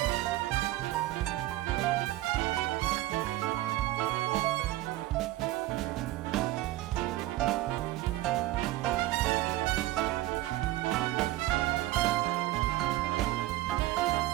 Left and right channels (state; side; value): quieter; left; 16.8 dB